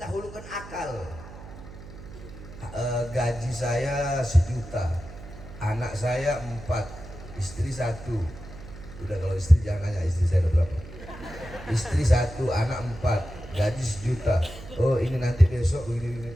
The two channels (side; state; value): right; noise; hum, 15 dB below the sound